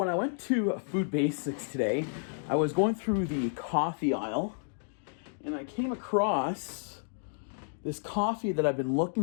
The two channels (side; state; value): right; silent; digital silence